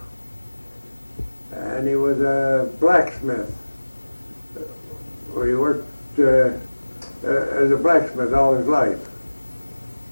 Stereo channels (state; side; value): inverted; both; correlation -1.00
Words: and he was a blacksmith. He worked as a blacksmith all his life.